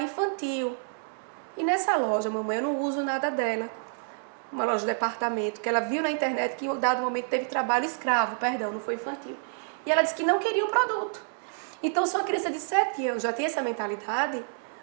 infantil. E nessa loja, mamãe, eu não uso nada dela. Uma loja de departamento, que ela viu na internet que em dado momento teve trabalho escravo, perdão, não foi infantil. E ela disse que não queria o produto. Então, se uma criança de 7 anos já tem essa mentalidade,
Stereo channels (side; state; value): left; silent; digital silence